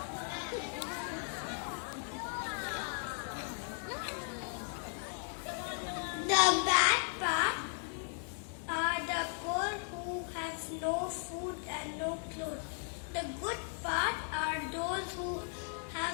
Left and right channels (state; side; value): silent; right; 53 dB below the other